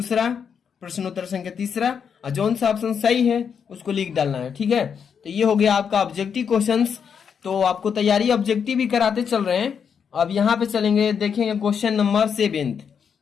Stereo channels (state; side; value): quieter; right; 7.0 dB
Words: प्रश्नोत्तर संख्या तीसरा, और जौन सा ऑप्शन सही है उसको लिख डालना है, ठीक है। तो ये हो गया आपका ऑब्जेक्टिव क्वेश्चंस। तो आपको तैयारी ऑब्जेक्टिव भी कराते चल रहे हैं। अब यहाँ पे चलेंगे, देखेंगे क्वेश्चन नंबर 7।